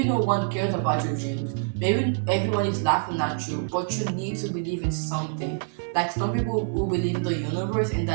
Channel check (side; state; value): left; silent; digital silence